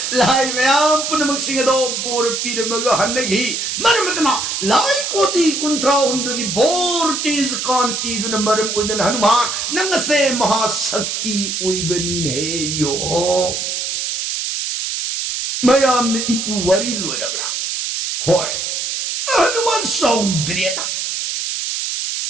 लाई मयाम पुनमक सिंगदो बोर पिरमग हन्नगी मरमतना लाई कोती कुंत्रा हुंदगी बोर तेज कांति दुन मरम उदन हनुमान नंगसे महाशक्ति उइबनी ने यो मयाम ने इपु वरी लोरबरा होय हनुमान सौद्रेना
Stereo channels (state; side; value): noise; right; hiss, 2 dB below the sound